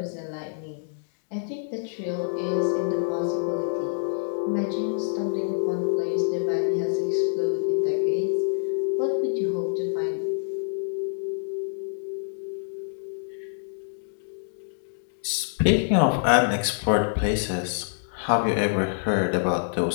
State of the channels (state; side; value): silent; right; digital silence